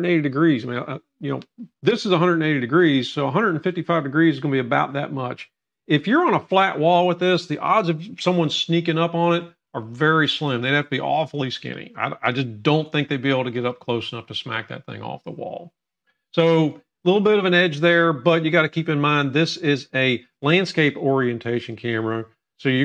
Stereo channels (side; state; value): both; identical; correlation 1.00